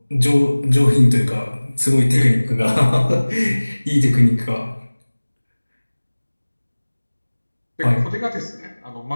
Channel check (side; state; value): both; inverted; correlation -1.00